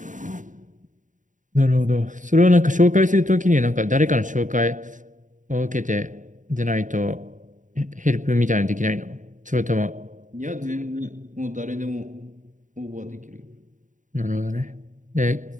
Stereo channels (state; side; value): late; left; 0.37 ms